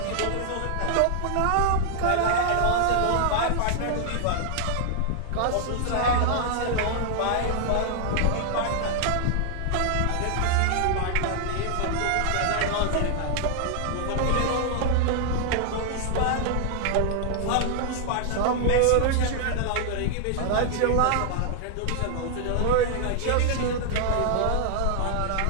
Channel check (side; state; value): both; different; correlation 0.00